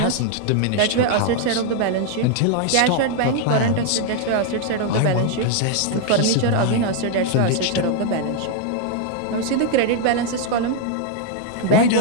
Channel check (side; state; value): both; different; correlation 0.00